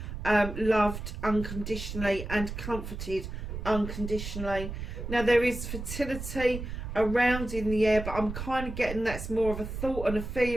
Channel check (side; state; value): right; noise; rumble, 7 dB below the sound